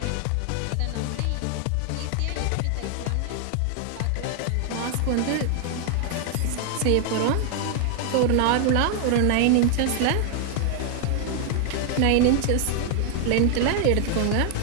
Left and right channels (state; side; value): different; both; correlation 0.00